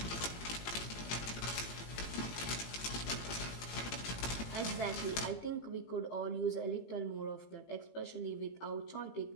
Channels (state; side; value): late; right; 18 ms